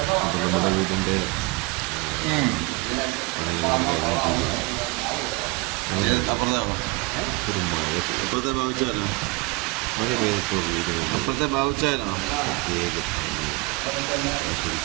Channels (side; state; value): left; quieter; 24.9 dB